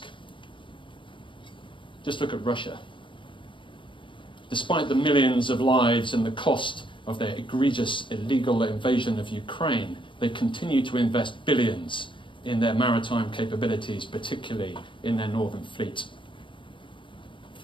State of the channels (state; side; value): late; right; 0.24 ms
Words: Just look at Russia. Despite the millions of lives and the cost of their egregious illegal invasion of Ukraine, they continue to invest billions in their maritime capabilities, particularly in their northern fleet.